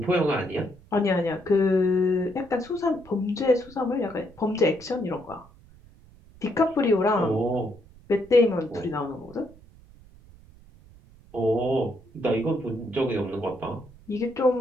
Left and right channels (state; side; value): noise; right; rumble, 24 dB below the sound